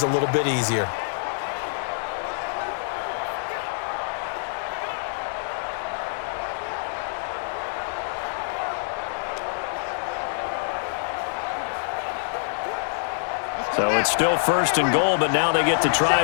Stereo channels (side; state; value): right; silent; digital silence